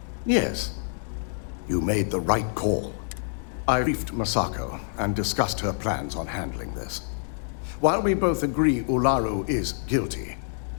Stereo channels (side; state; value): right; silent; 60 dB below the other